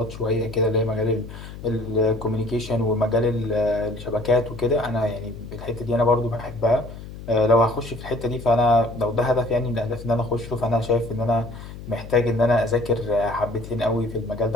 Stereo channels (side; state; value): left; noise; hum, 13 dB below the sound